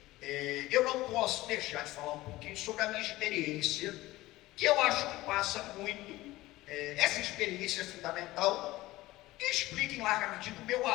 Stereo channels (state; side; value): quieter; right; 18.0 dB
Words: eu não posso deixar de falar um pouquinho sobre a minha experiência, que eu acho que passa muito, essa experiência fundamental, e explica em larga medida o meu